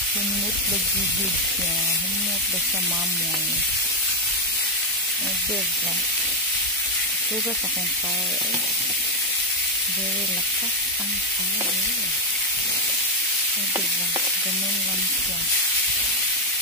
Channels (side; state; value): both; normal; correlation 0.04